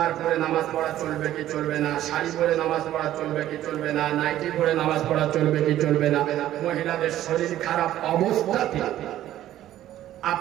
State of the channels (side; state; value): left; quieter; 13.0 dB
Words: পরে নামাজ পড়া চলবে কি চলবে না, শাড়ি পরে নামাজ পড়া চলবে কি চলবে না, নাইটি পরে নামাজ পড়া চলবে কি চলবে না, মহিলাদের শরীর খারাপ অবস্থাতে